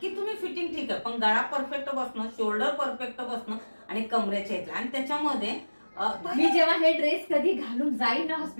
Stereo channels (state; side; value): inverted; both; correlation -1.00